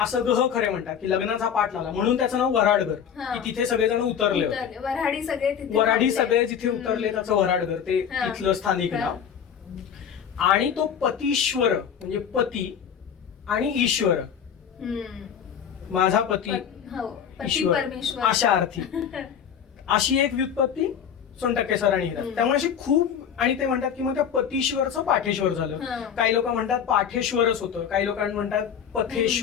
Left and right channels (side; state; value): right; quieter; 8.1 dB